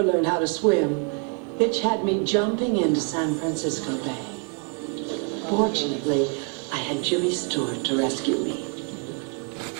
learned how to swim, Hitch had me jumping into San Francisco Bay. Fortunately, I had Jimmy Stewart to rescue me.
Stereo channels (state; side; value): quieter; left; 39.5 dB